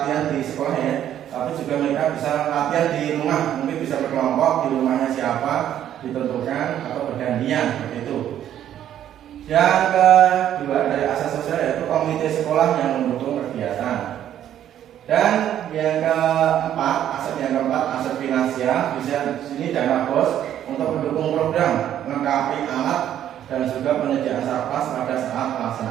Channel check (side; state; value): left; quieter; 10.9 dB